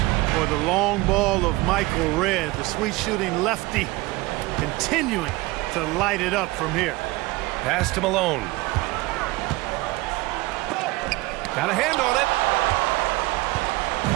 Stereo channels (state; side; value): quieter; left; 20.9 dB